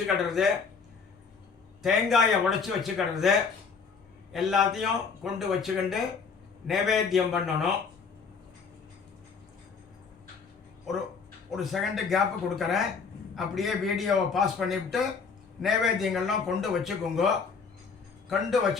தேங்காயை உடைச்சி வச்சுக்கிடுறது, எல்லாத்தையும் கொண்டு வச்சுக்கிண்டு நைவேத்தியம் பண்ணணும். ஒரு செகண்டு கேப்பு கொடுக்குறேன், அப்படியே வீடியோவை பாஸ் பண்ணிவிட்டு நைவேத்தியங்கள்லாம் கொண்டு வச்சுக்கோங்க. கொண்டு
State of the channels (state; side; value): quieter; right; 5.4 dB